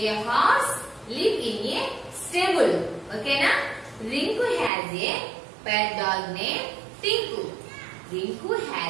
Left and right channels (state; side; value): drops out; left; at 4.7 s